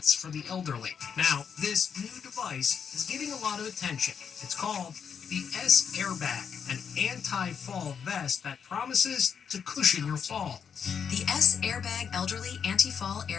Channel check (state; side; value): quieter; right; 7.1 dB